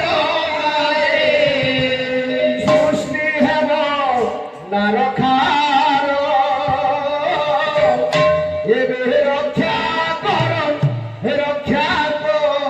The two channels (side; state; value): both; identical; correlation 1.00